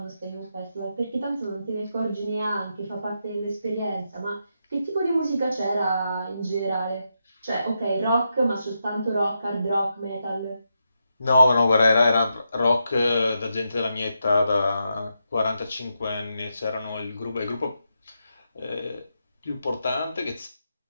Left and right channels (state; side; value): inverted; both; correlation -0.84